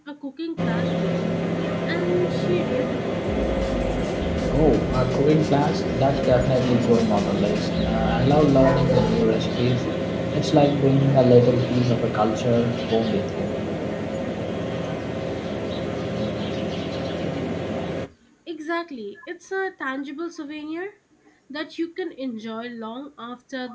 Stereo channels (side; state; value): both; identical; correlation 1.00